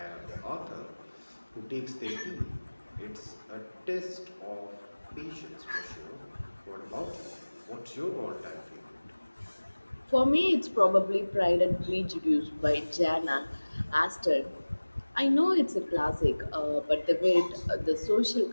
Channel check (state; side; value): inverted; both; correlation -1.00